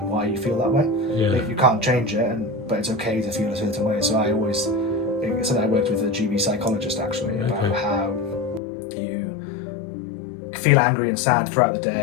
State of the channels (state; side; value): drops out; right; at 8.6 s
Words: and why you feel that way. You can't change it, but it's okay to feel a certain way. So I always, it's something I worked with a GB psychologist actually, about how you feel angry and sad throughout the